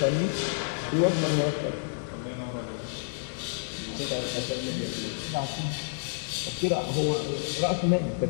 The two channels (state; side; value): silent; right; digital silence